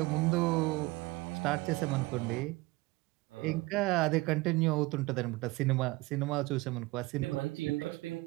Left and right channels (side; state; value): left; quieter; 21.9 dB